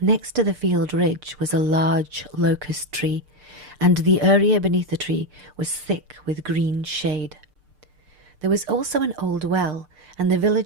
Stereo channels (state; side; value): late; left; 6.7 ms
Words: to the field ridge was a large locust tree, and the area beneath the tree was thick with green shade. There was also an old well, and the